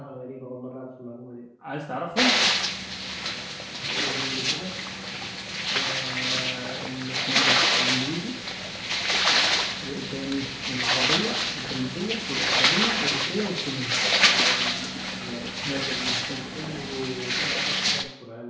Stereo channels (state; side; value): identical; both; correlation 1.00